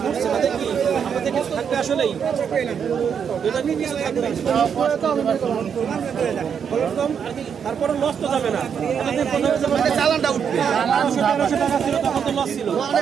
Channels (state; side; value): quieter; left; 7.4 dB